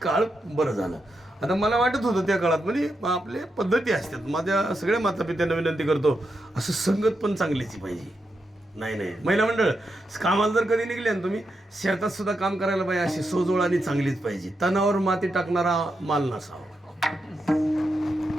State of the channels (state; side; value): normal; both; correlation 0.85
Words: काळ बरं झालं. आता मला वाटत होतं त्या काळात म्हणजे आपले पद्धती असतात. माझ्या सगळ्या मातापित्यांना विनंती करतो असं संगत पण चांगलीची पाहिजे. नाही महिला मंडळ कामाला जर कधी निघले ना तुम्ही शेतात सुद्धा काम करायला पाहिजे अशी सोजवळ आणि चांगलीच पाहिजे. तणावर माती टाकणारा माल नसावा.